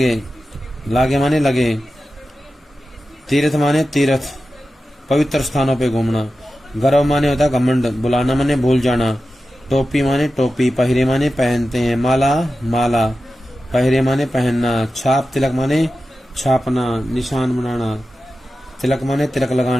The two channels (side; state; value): both; normal; correlation 0.93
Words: लागे माने लगे, तीर्थ माने तीर्थ पवित्र स्थानों पे घूमना, गर्व माने होता है घमंड, बुलाना माने भूल जाना, टोपी माने टोपी, पहरे माने पहनते हैं, माला माला, पहरे माने पहनना, छाप तिलक माने छापना, निशान बनाना, तिलक माने तिलक